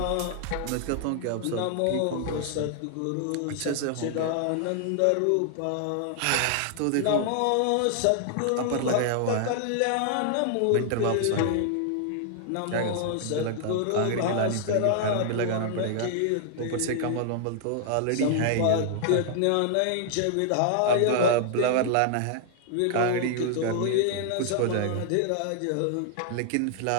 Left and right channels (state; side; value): different; both; correlation 0.00